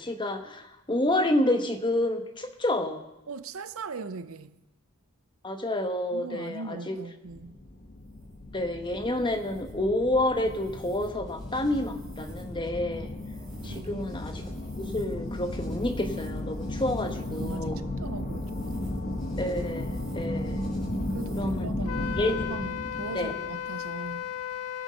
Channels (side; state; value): both; normal; correlation 0.59